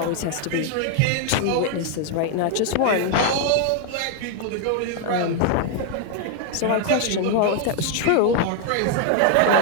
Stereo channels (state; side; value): different; both; correlation 0.00